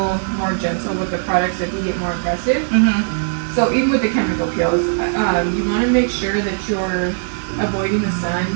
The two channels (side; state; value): left; silent; digital silence